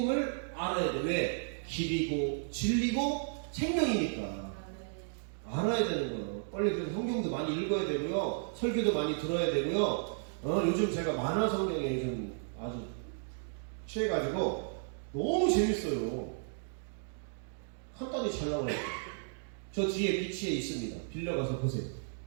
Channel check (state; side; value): silent; left; digital silence